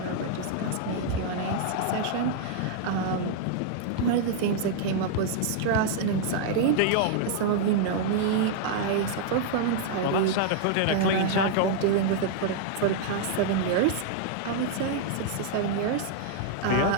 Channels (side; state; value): both; different; correlation -0.01